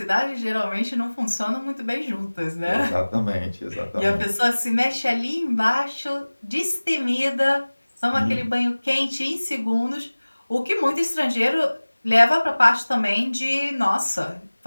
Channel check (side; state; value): both; inverted; correlation -1.00